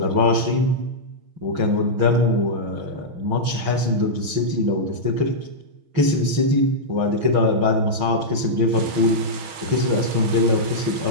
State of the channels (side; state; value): left; late; 6.3 ms